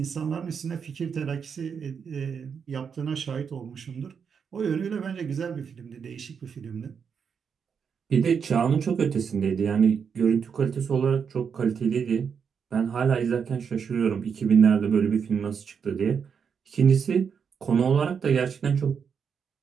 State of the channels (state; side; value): quieter; left; 6.7 dB